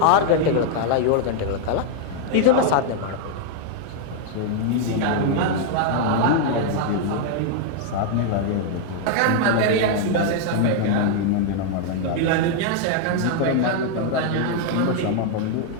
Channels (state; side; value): different; both; correlation 0.00